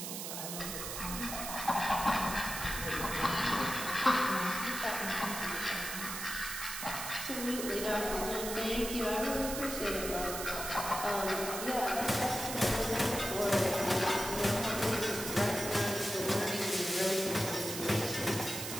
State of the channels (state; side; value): noise; right; hiss, 5 dB below the sound